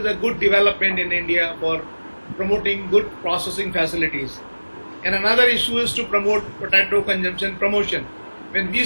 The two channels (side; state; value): both; inverted; correlation -1.00